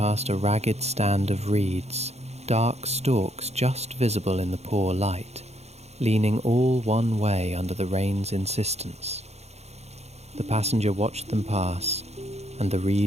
a ragged stand of reeds, dark stalks just visible in the poor light, leaning all one way under the rain's insistence. The passenger watched them pass, and the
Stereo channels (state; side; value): late; left; 0.31 ms